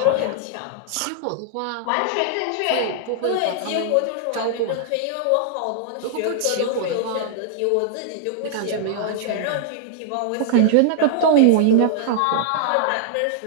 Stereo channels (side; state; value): both; different; correlation -0.01